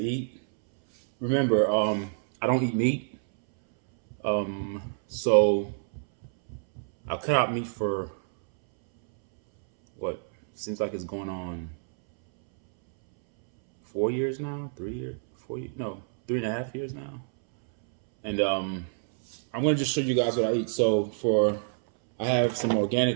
Remember, I don't eat meat, so I cut out meat for what seems like it's going on 4 years now, 3 years, 4 years, no, 3.5 years now. And I'm going to just show you guys what I eat. So I have some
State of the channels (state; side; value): silent; left; 60 dB below the other